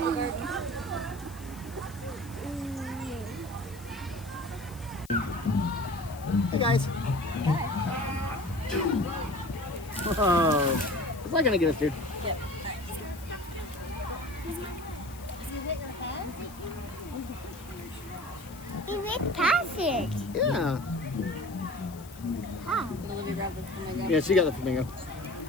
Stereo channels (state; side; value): noise; left; hiss, 20 dB below the sound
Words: garden. Hey, guys. Oh, it's not gonna get us, dude. Yep. He made passage. Yeah. How? Did Olivia grab the flamingo? Yeah, she got the flamingo.